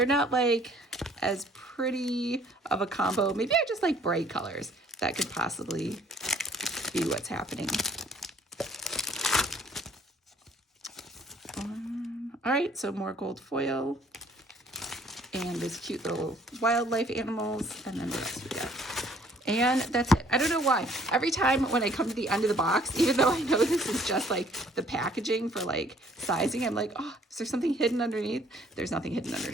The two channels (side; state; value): both; normal; correlation 0.59